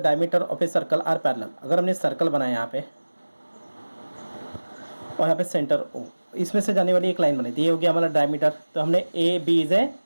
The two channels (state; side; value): inverted; both; correlation -1.00